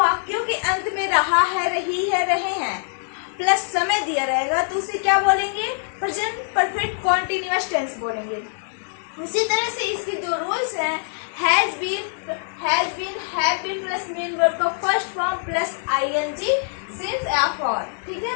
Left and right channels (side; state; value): right; silent; digital silence